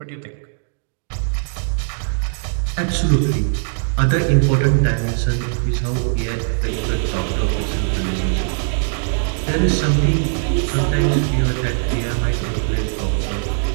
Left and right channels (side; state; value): left; silent; digital silence